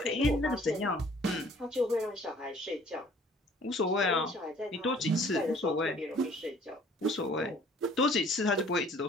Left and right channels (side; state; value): both; normal; correlation 0.55